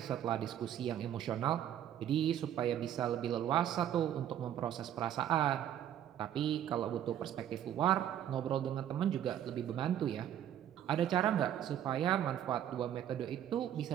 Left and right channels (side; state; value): left; quieter; 10.6 dB